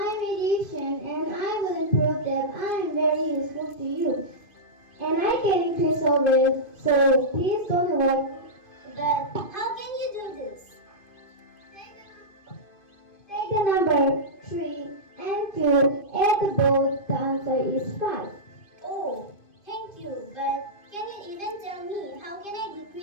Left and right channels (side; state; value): right; late; 2.5 ms